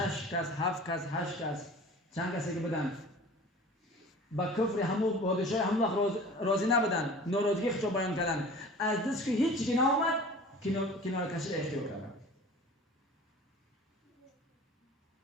کس 7 کس 8 کس چند کسی که بودن با کفر همون پادشاه همون وقت راضی نبودن، ناراضگی خودشو بیان کردن، از دست که هیچ چیزی نآمد کنار کشی را اختیار کردن.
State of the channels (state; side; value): normal; both; correlation 0.42